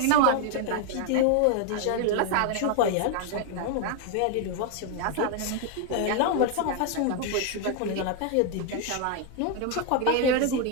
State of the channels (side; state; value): both; different; correlation 0.01